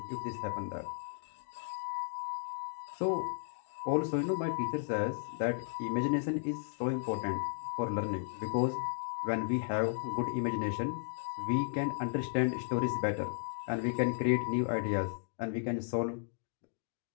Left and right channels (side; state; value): right; silent; digital silence